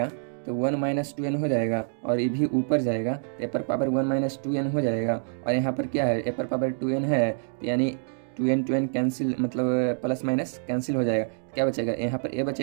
तो 1 माइनस 2n हो जाएगा, और ये भी ऊपर जाएगा तो ए पर पावर 1 माइनस 2n हो जाएगा, और यहाँ पर क्या है, ए पर पावर 2n है, यानी 2n कैंसिल, मतलब प्लस माइनस कैंसिल हो जाएगा, क्या बचेगा, यहाँ पर ए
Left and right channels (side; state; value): left; silent; digital silence